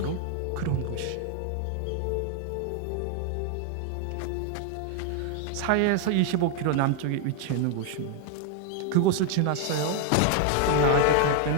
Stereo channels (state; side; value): different; both; correlation 0.00